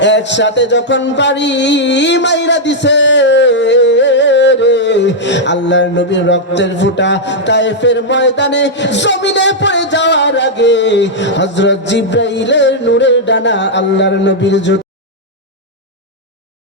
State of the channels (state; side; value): normal; both; correlation -0.04